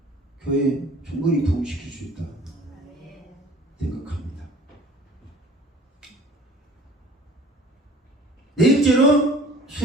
교회 충분히 부흥시킬 수 있다 생각합니다. 네 번째로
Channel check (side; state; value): both; normal; correlation 0.48